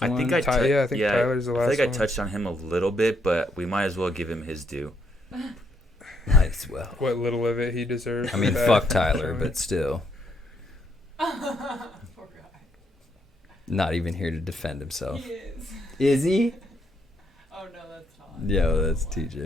I think Tyler's the last I think I one. touched on him a little bit, but we might as well give him his due. Might as well. What little of it he deserves. I mean, back. fuck Tyler, but still. Poor guy. Not even here to defend himself. He is. Is he? Oh no, that's not. Yo, that's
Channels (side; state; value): both; normal; correlation 0.74